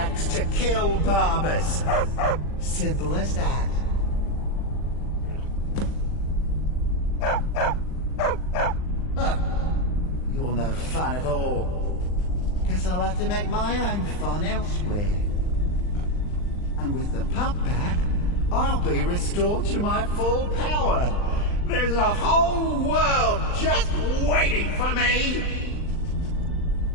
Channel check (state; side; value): late; right; 39 ms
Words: to kill Barbas. Simple as that. Huh. You're no fun at all. Guess I'll have to make my own fun elsewhere. And with the pup back, I'll be restored to my full power. There's a whole world just waiting for me!